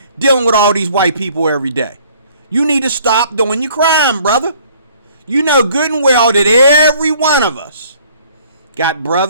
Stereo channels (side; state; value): both; inverted; correlation -0.57